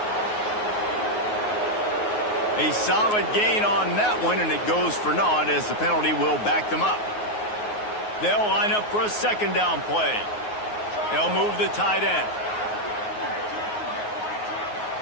A solid gain on that one, and it goes for naught as the penalty will back them up. They'll line up for a second down play. They'll move the tight end.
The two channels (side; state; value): right; late; 9.5 ms